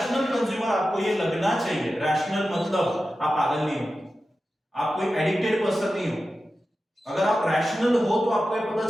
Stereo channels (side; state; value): both; normal; correlation 0.93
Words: कंज्यूमर आपको ये लगना चाहिए। रैशनल मतलब आप पागल नहीं हो, आप कोई एडिक्टेड पर्सन नहीं हो। अगर आप रैशनल हो तो आपको ये पता